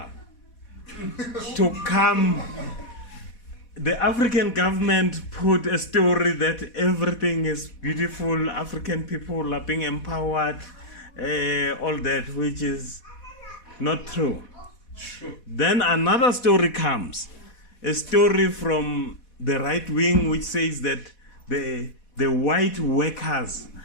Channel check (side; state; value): right; late; 4.1 ms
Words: To come, the African government put a story that everything is beautiful, African people are being empowered, all that, which is not true. Then another story comes, a story from the right wing which says that the white workers